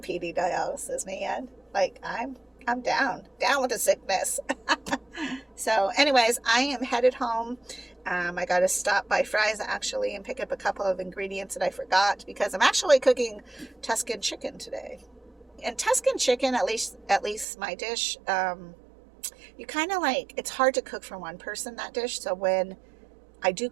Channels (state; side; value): drops out; left; at 17.4 s